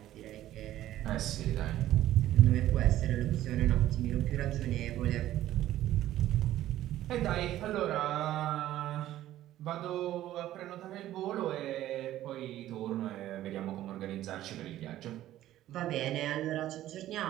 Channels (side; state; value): left; quieter; 13.7 dB